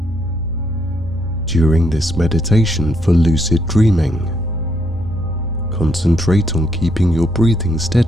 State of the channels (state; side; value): normal; both; correlation 0.74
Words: During this meditation for lucid dreaming, concentrate on keeping your breathing